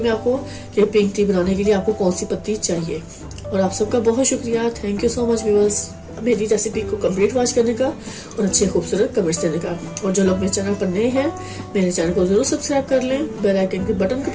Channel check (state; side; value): identical; both; correlation 1.00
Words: आपको कि पिंक टी बनाने के लिए आपको कौन सी पत्ती चाहिए। और आप सबका बहुत शुक्रिया, thank you so much viewers, मेरी रेसिपी को कंप्लीट वॉच करने का और अच्छे खूबसूरत कमेंट्स देने का। और जो लोग मेरे चैनल पर नए हैं, मेरे चैनल को जरूर सब्सक्राइब कर लें, बेल आइकन के बटन को